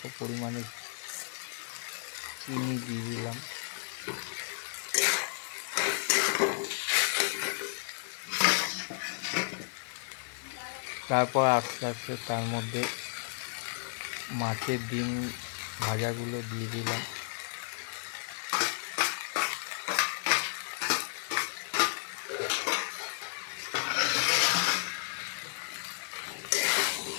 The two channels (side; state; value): right; silent; digital silence